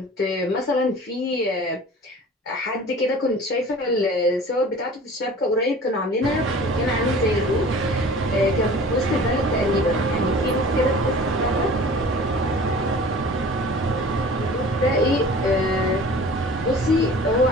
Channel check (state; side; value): normal; both; correlation 0.43